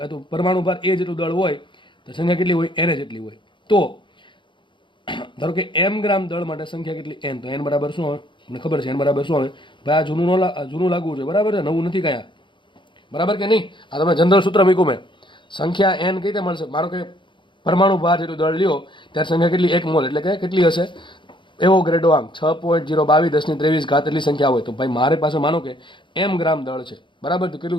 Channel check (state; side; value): late; right; 0.23 ms